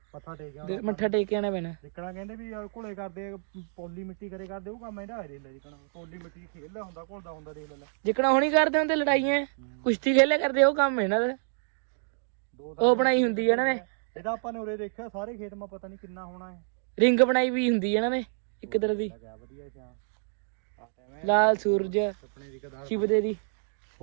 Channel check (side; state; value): left; silent; digital silence